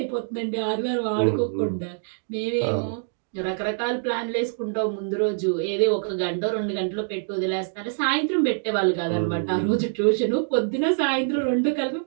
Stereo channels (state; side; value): silent; left; digital silence